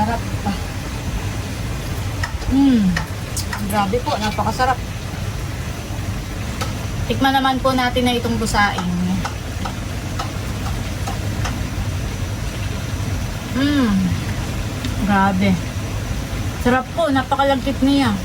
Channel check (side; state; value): both; identical; correlation 1.00